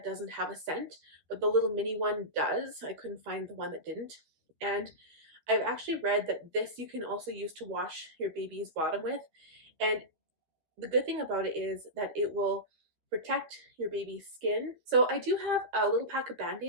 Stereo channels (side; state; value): left; late; 12 ms